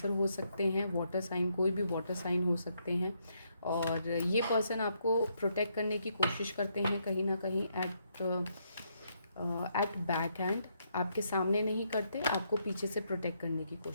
हो सकते हैं. वाटर साइन, कोई भी वाटर साइन हो सकते हैं. और ये पर्सन आपको प्रोटेक्ट करने की कोशिश करते हैं कहीं ना कहीं एट बैक हैंड. आपके सामने नहीं करते, आपको पीछे से प्रोटेक्ट करने की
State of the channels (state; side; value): inverted; both; correlation -0.76